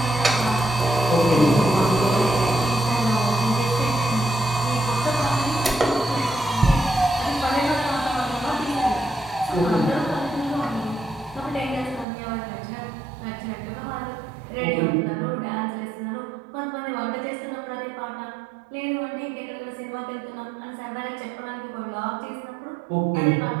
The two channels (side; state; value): left; drops out; at 12.1 s